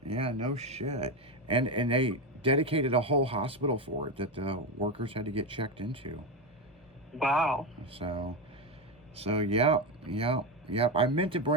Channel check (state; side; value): normal; both; correlation 0.13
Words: Yeah, no shit. And they dedicated a whole hospital for it that the workers had to get checked into. Wow. So yep. I meant to